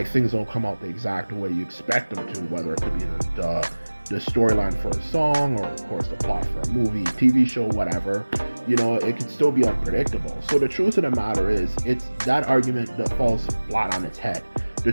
things don't come out the exact way you expect them to, whether it could be the storyline for a song, or of course the plot for a movie, TV show, whatever. It can still be unpredictable. So the truth of the matter is, it's that argument that falls flat on its head. The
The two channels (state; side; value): inverted; both; correlation -1.00